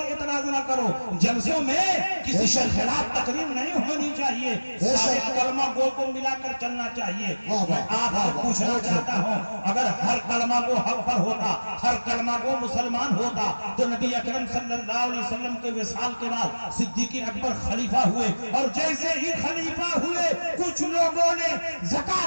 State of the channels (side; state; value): both; inverted; correlation -1.00